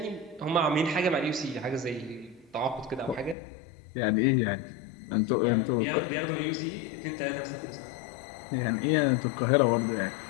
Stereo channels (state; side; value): drops out; right; at 3.4 s